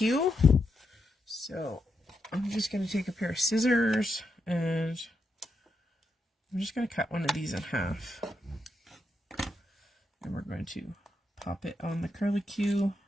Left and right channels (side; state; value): both; normal; correlation 0.83